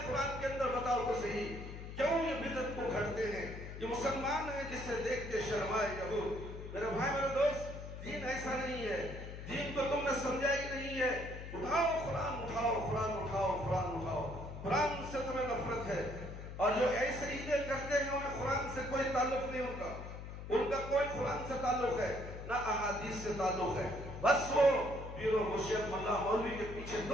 قرآن کے اندر؟ بتاؤ تو صحیح، کیوں یہ بدعت کو گھڑتے ہیں؟ یہ مسلمان ہیں جس سے دیکھ کے شرمائے یہود۔ میرے بھائی میرے دوست، دین ایسا نہیں ہے، دین کو تم نے سمجھا ہی نہیں ہے۔ اٹھاؤ قرآن، اٹھاؤ قرآن، اٹھاؤ قرآن، اٹھاؤ قرآن سے تمہیں نفرت ہے، اور جو ایسے عیدیں کرتے ہیں انہیں قرآن سے کوئی تعلق نہیں، ان کا کوئی قرآن سے تعلق ہے نہ احادیث سے تعلق ہے، بس وہ پیر و مرشد ملا مولوی کے پیچھے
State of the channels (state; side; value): noise; left; hum, 9 dB below the sound